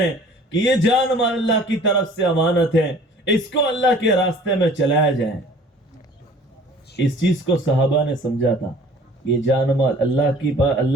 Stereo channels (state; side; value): normal; both; correlation 0.50